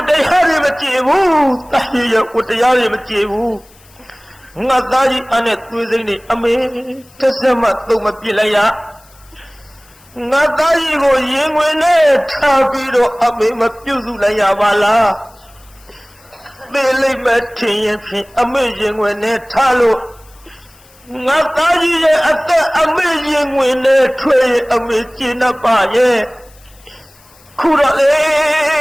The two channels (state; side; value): noise; left; hiss, 28 dB below the sound